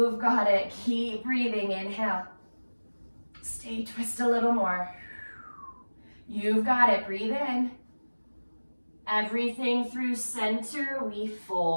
got it. Keep breathing. Inhale. Stay, twist a little more. You've got it. Breathe in. Everything through center, we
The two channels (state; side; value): inverted; both; correlation -1.00